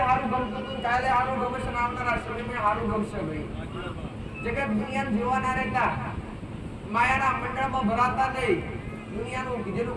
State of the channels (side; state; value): both; identical; correlation 1.00